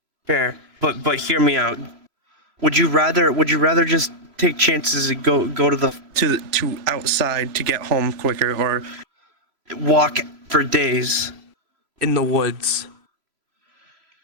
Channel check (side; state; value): left; late; 3.0 ms